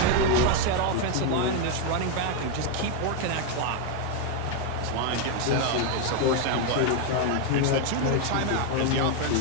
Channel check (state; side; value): different; both; correlation 0.01